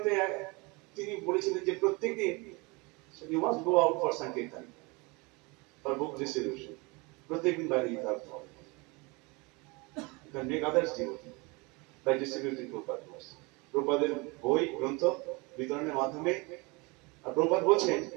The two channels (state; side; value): quieter; left; 27.1 dB